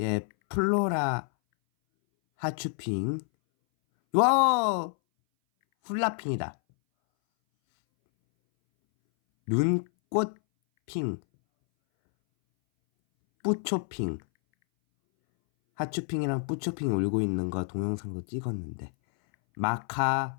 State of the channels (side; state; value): right; silent; 59 dB below the other